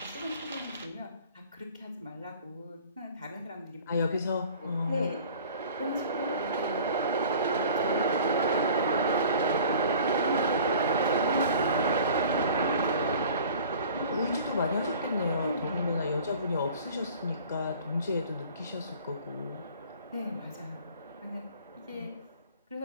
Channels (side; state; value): both; inverted; correlation -0.46